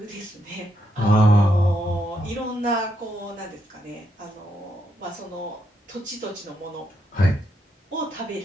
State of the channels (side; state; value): both; normal; correlation 0.79